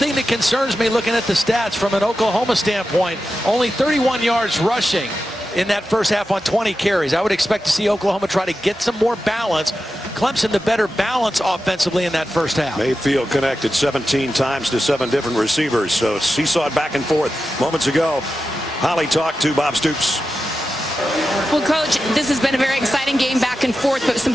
that concerns me looking at the stats from an Oklahoma standpoint, only 31 yards rushing in that first half on 20 carries. I would expect to see Oklahoma try to get some more balance. Clemson the better balance offensively in that first half. Mayfield connected 17 times to 7 different receivers, so seesawed back and forth. Moments ago, Holly talked to Bob Stoops. Well, Coach, this has been a very exciting game back and forth, but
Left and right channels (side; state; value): both; normal; correlation 0.91